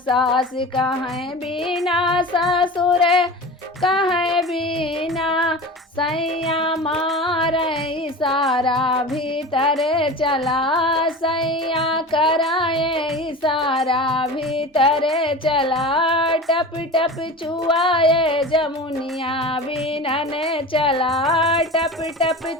कहें बिना ससुर कहें बिना, सैया मारे इशारा भीतर चला, सैया कराए इशारा भीतर चला। टप टप चुआए जमुनिया बिनन चला, टप टप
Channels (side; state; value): both; normal; correlation 0.33